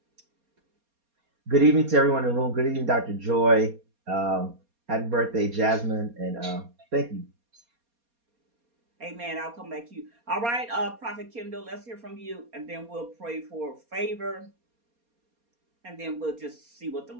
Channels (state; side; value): late; left; 4.2 ms